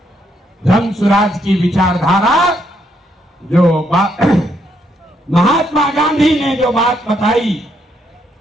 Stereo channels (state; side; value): normal; both; correlation 0.74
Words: जन स्वराज की विचारधारा जो महात्मा गांधी ने जो बात बताई,